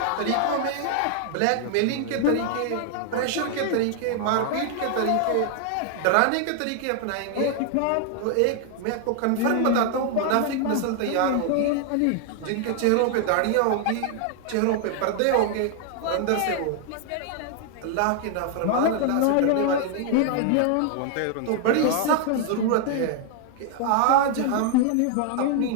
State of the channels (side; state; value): both; different; correlation 0.00